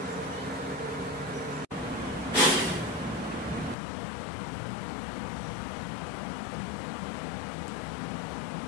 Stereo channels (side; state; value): right; drops out; at 3.8 s